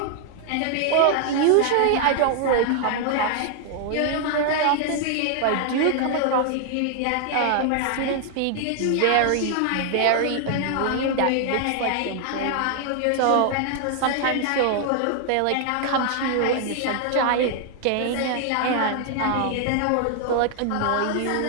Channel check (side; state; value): both; different; correlation 0.00